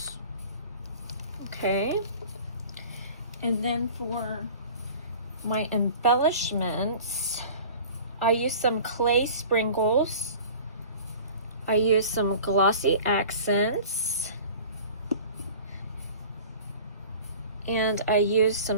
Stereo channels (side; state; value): both; inverted; correlation -0.42